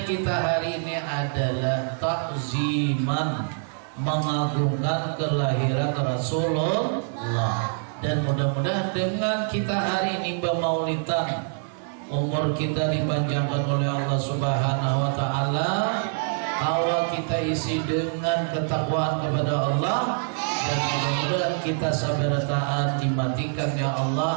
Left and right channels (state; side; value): silent; left; 58 dB below the other